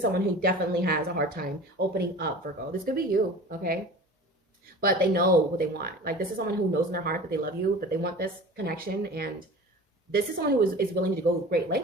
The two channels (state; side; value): normal; both; correlation 0.39